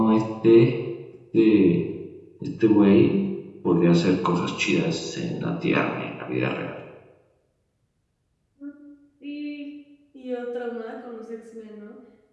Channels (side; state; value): both; identical; correlation 1.00